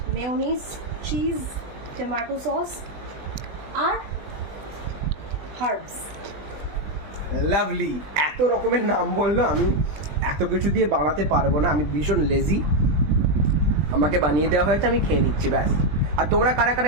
মেয়োনিজ, চিজ, টমেটো সস আর হার্বস। লাভলি। এত রকমের নাম বললো, আমি এত কিছু দিয়ে বানাতে পারবো না, আমি ভীষণ লেজি। আমাকে বানিয়ে দেওয়া হয়েছে, আমি খেয়ে নিচ্ছি ব্যাস। আর তোমরা কারা কারা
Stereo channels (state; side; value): late; left; 20 ms